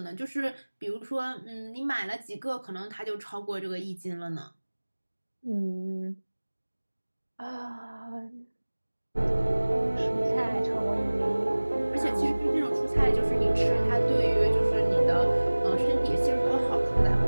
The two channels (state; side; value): inverted; both; correlation -1.00